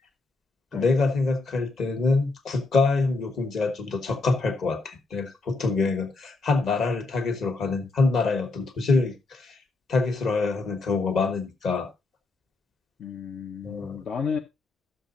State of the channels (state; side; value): quieter; right; 3.5 dB